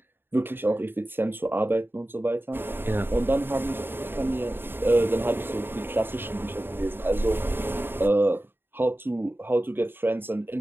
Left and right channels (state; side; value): late; left; 0.10 ms